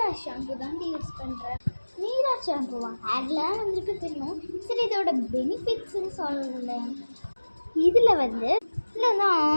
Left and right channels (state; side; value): inverted; both; correlation -1.00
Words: ஷாம்பு தான் யூஸ் பண்ணுறேன். மீரா ஷாம்புவா ஹேர்லாம் வந்துருக்கு தெரியும். சரி, இதோட பெனிஃபிட்ஸ்ன்னு சொல்லலை. இதில் வந்து